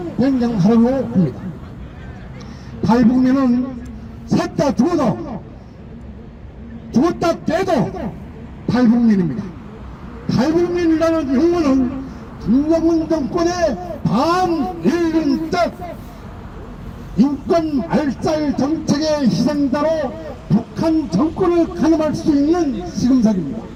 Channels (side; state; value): both; identical; correlation 1.00